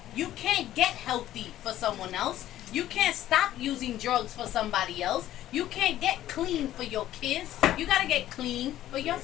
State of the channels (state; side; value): quieter; right; 13.3 dB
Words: You can't get healthy for someone else. You can't stop using drugs for somebody else. You can't get clean for your kids. You got to get clean for